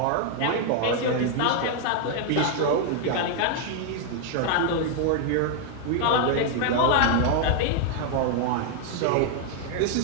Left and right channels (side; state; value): both; different; correlation 0.00